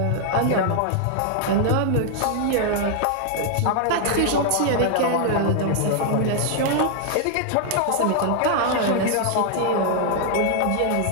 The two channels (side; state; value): both; different; correlation 0.00